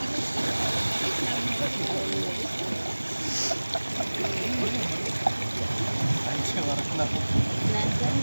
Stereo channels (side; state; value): both; inverted; correlation -1.00